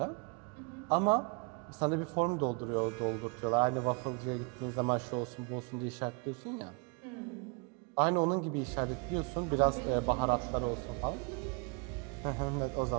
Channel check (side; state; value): left; quieter; 33.7 dB